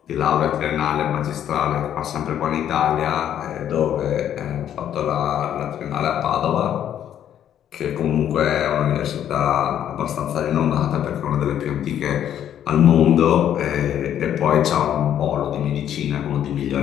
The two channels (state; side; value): quieter; right; 10.3 dB